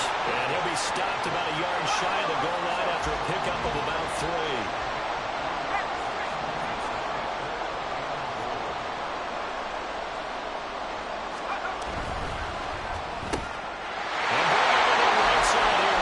And he'll be stopped about a yard shy of the goal line after a pickup of about 3.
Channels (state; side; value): identical; both; correlation 1.00